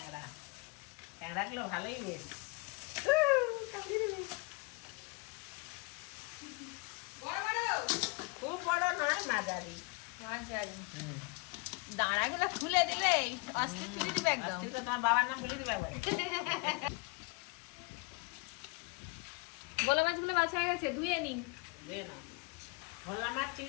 ক্যাংড়াগুলো ভালোই বেশ। খুব বড় নয়, মাঝারি। দাঁড়াগুলো খুলে দিলে অস্থির তুলে দিবে একদম। আজকে তো তোমার বাবার নাম বলে দিবে একবার। বলা মাছগুলো বাছা হয়ে গেছে, ধুয়ে নিন। ধুয়ে নাও। ভোলা মাছ,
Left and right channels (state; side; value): quieter; right; 28.6 dB